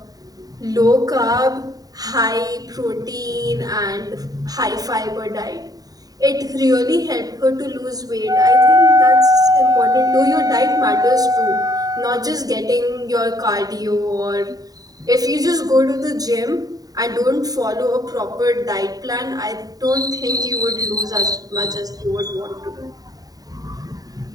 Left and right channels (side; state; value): left; late; 0.18 ms